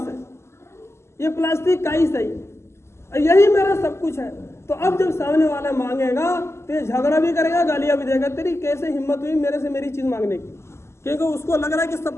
ہے، یہ پلاسٹک کا ہی صحیح، یہی میرا سب کچھ ہے، تو اب جب سامنے والا مانگے گا تو یہ جھگڑا بھی کرے گا، گالیاں بھی دے گا، تیری کیسے ہمت ہوئی میرے سے میری چیز مانگنے کی، کیونکہ اس کو لگ رہا ہے کہ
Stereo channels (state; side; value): late; right; 0.13 ms